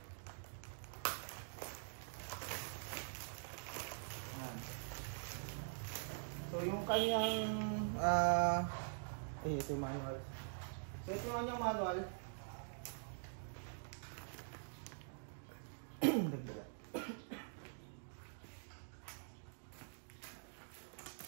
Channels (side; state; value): left; silent; digital silence